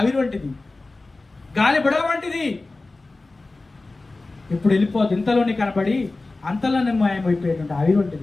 వంటిది, గాలి బుడగ వంటిది. ఇప్పుడు వెళ్ళిపోదు. ఇంతలోనే కనబడి అంతలోనే మాయమైపోయేటువంటి ఆవిరి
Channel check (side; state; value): right; quieter; 3.3 dB